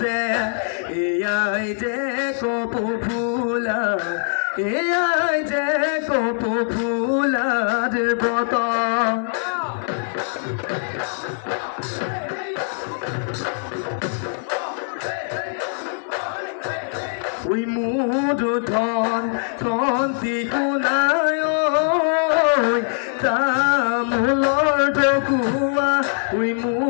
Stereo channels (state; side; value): silent; right; digital silence